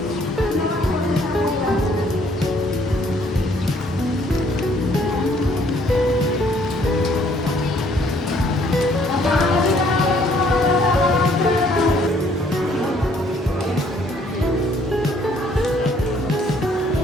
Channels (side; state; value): both; normal; correlation 0.63